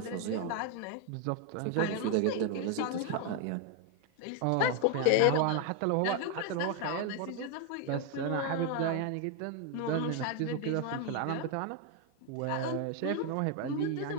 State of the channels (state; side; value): different; both; correlation 0.01